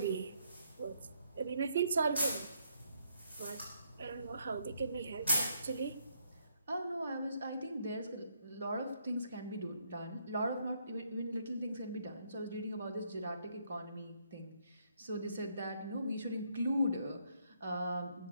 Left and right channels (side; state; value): both; inverted; correlation -0.73